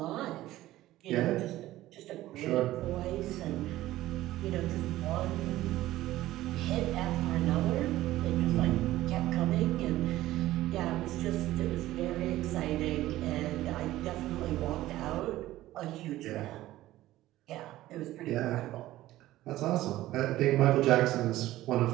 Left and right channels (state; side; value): quieter; left; 15.6 dB